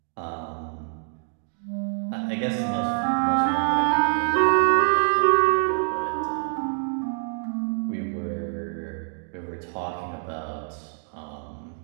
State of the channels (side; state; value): left; silent; 56 dB below the other